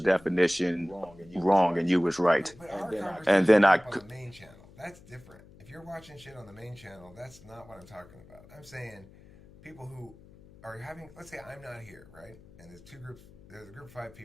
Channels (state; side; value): noise; left; hum, 23 dB below the sound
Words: wrong and you was right. But our And conversation then came I, up on the main channel. That's different. If you're watching shit on the main channel, that's not what I'm talking about. I'm saying people who are having, let's say I'm not here, right? And there's two groups, there's a group of five